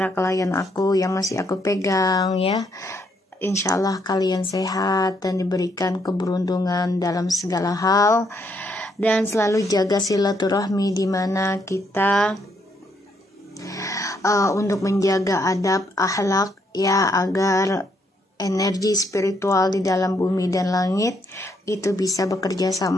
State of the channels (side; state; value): both; normal; correlation 0.74